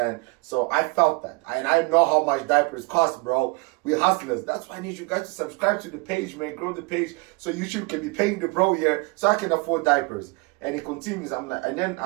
So I felt that. And I know how much diapers cost, bro. We hustlers. That's why I need you guys to subscribe to the page, man. Grow the page so YouTube can be paying the bro here so I can afford diapers. And he continues. I'm like, and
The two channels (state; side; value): quieter; left; 27.2 dB